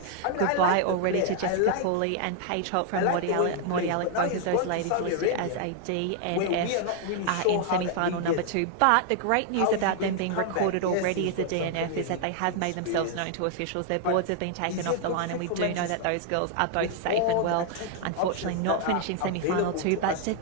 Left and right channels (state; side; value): different; both; correlation 0.00